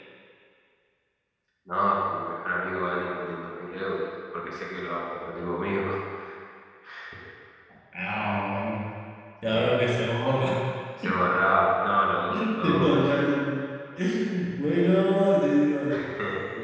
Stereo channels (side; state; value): both; identical; correlation 1.00